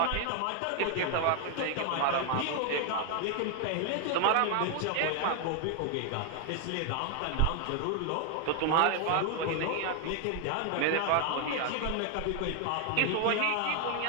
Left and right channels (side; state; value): both; different; correlation 0.00